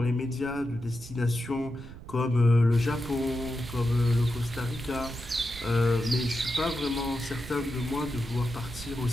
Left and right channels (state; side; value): noise; right; rumble, 15 dB below the sound